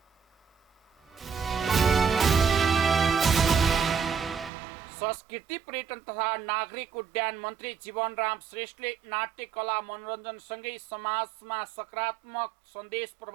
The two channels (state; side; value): drops out; left; at 4.5 s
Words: संस्कृति पर्यटन तथा नागरिक उड्डयन मन्त्री जीवनराम श्रेष्ठले नाट्य कला मनोरञ्जनसँगै समाजमा सकारात्मक सन्देश